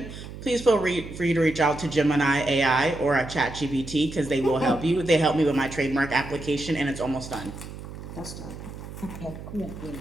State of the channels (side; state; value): right; noise; hum, 12 dB below the sound